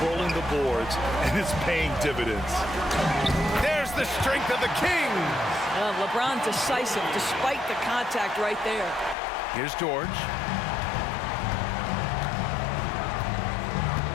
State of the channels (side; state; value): right; drops out; at 9.2 s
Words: the boards, and it's paying dividends. There's the strength of the Kings. LeBron decisive despite the contact right there. Here's George.